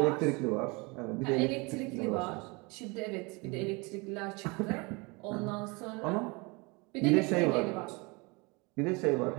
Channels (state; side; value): quieter; left; 27.6 dB